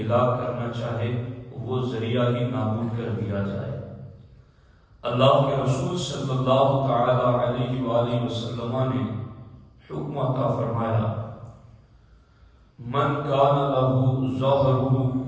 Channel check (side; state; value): both; identical; correlation 1.00